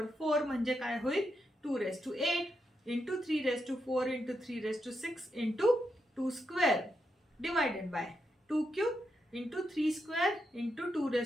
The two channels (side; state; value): both; normal; correlation 0.83